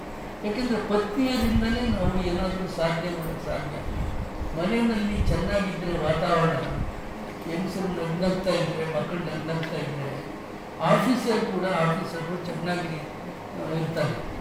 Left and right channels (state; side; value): identical; both; correlation 1.00